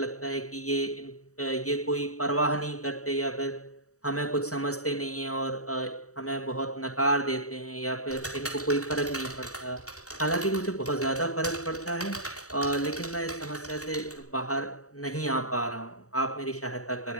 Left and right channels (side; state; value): right; late; 0.65 ms